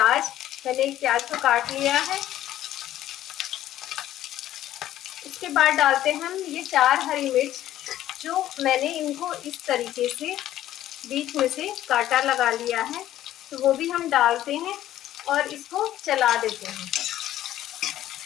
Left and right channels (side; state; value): right; quieter; 13.0 dB